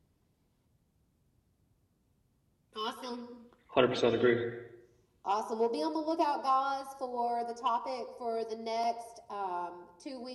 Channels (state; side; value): identical; both; correlation 1.00